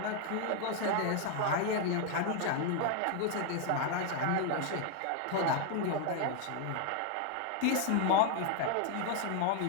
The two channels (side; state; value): both; different; correlation 0.00